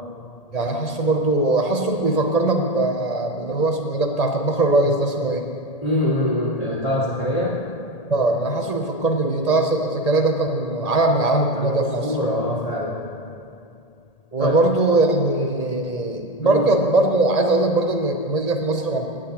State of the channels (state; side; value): late; right; 1.8 ms